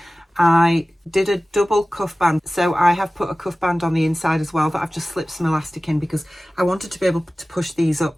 I did a double cuff band, so I have put a cuff band on the inside as well that I've just slipped some elastic in, because I wanted to be able to push these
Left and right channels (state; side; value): normal; both; correlation 0.97